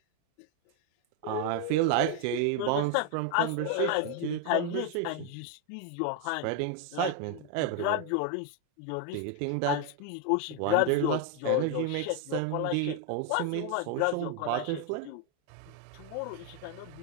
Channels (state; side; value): different; both; correlation 0.01